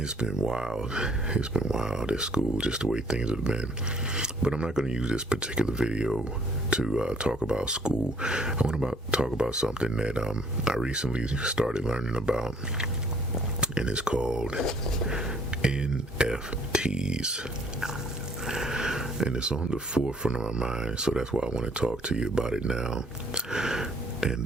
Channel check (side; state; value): both; normal; correlation 0.60